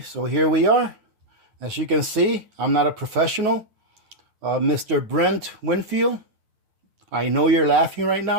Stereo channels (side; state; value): left; late; 9.5 ms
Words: so here we are. As you can see, I'm not a professional. Mr. Brent Winfield, I know you're laughing right